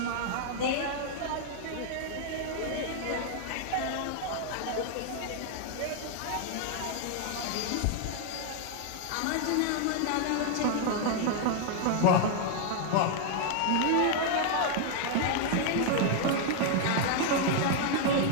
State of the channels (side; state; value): both; different; correlation 0.00